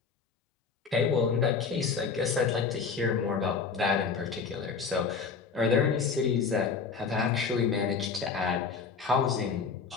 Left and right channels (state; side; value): quieter; right; 5.4 dB